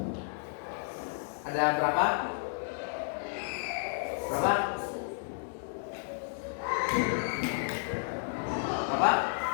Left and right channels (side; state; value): right; silent; 56 dB below the other